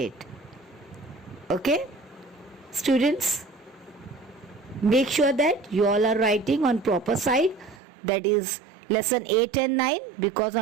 Okay? Students, make sure that you all are writing on proper side, that is lesson 8 and 9, because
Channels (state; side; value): drops out; left; at 7.8 s